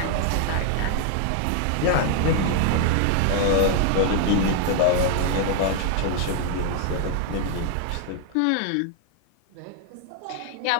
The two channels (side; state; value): both; different; correlation 0.00